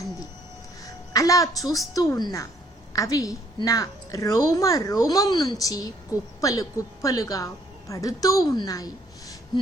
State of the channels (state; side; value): normal; both; correlation 0.64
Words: అంది. అలా చూస్తూ ఉన్నా అవి నా రోమ రోమం నుంచి కుప్పలు కుప్పలుగా పడుతూ ఉన్నాయి.